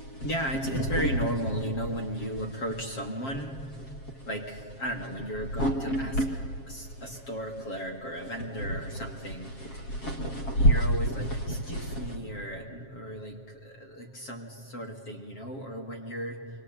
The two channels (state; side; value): late; right; 7.4 ms